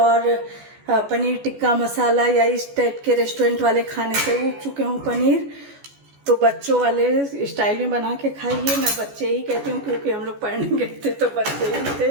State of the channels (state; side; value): late; left; 14 ms